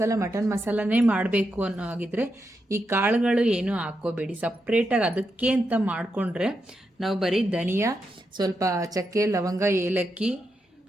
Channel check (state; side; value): normal; both; correlation 0.85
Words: ಮಟನ್ ಮಸಾಲನೇ ಮಾಡಬೇಕು ಅನ್ನೋ ಆಗಿದ್ರೆ ಈ ಕಾಳುಗಳು ಏನೂ ಹಾಕ್ಕೋಬೇಡಿ. ಸಪ್ರೇಟಾಗಿ ಅದಕ್ಕೆ ಅಂತ ಮಾಡಿಕೊಂಡ್ರೆ ನಾವು ಬರೀ ಧನಿಯಾ, ಸ್ವಲ್ಪ ಚಕ್ಕೆ, ಲವಂಗ, ಏಲಕ್ಕಿ,